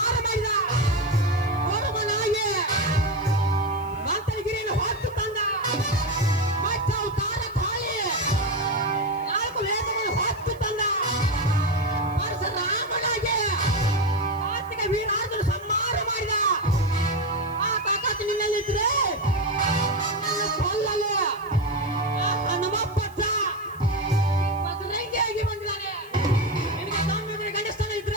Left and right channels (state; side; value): noise; right; hiss, 27 dB below the sound